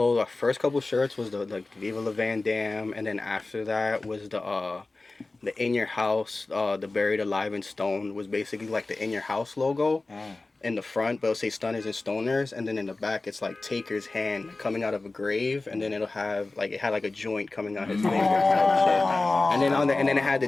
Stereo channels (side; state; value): right; quieter; 3.3 dB